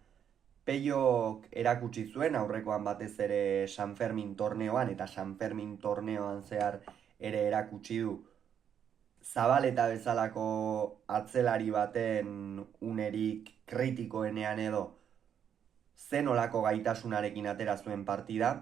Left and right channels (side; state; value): left; quieter; 8.6 dB